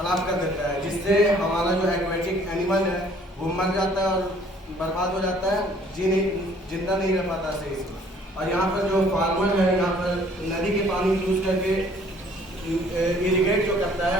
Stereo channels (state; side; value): normal; both; correlation 0.57